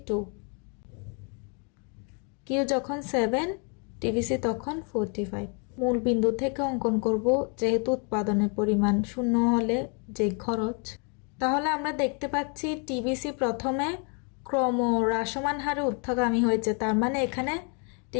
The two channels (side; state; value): right; quieter; 37.2 dB